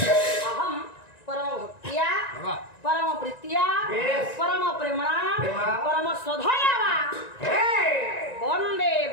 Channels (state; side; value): late; right; 1.9 ms